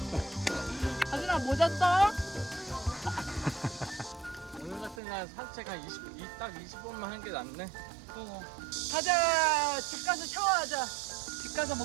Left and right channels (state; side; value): drops out; left; at 5.0 s